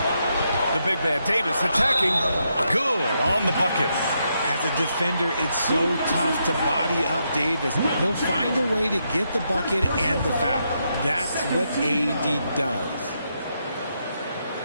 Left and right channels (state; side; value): inverted; both; correlation -0.80